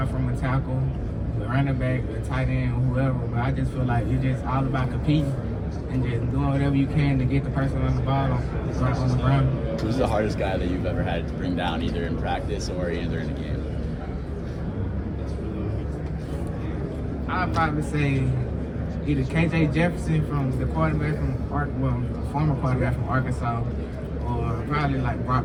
from a tackle, the running back, the tight end, whoever. But I just feel like it's just all about competing and just doing whatever you can to get the person on the ball on the ground. Who's the hardest guy that you've ever had to bring down, either in practice or either in a game? I'd probably say either KJ Jefferson from the quarterback former quarterback from Arkansas, or probably like Brock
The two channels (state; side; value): identical; both; correlation 1.00